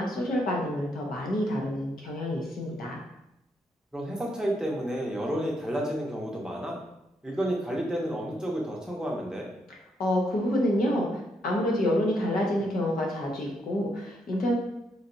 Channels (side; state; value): both; normal; correlation 0.77